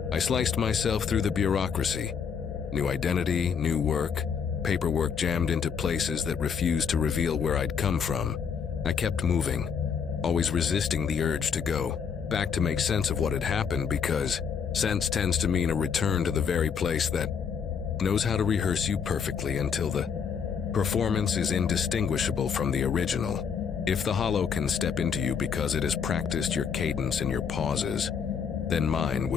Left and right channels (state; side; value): quieter; right; 6.7 dB